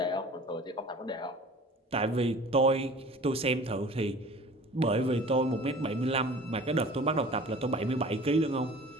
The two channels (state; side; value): normal; both; correlation 0.44